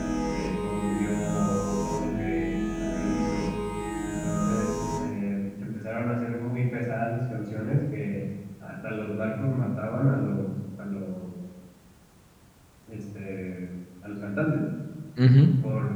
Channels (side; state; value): both; identical; correlation 1.00